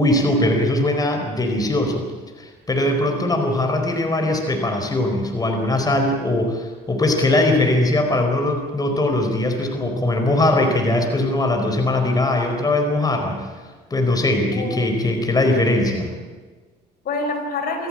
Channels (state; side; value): normal; both; correlation 0.55